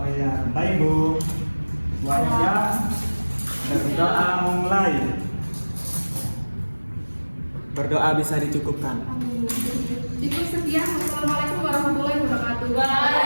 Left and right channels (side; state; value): both; inverted; correlation -1.00